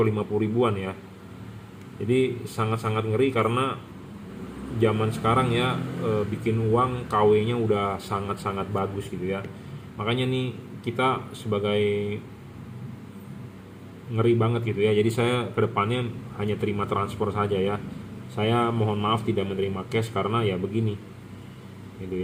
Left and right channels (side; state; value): both; identical; correlation 1.00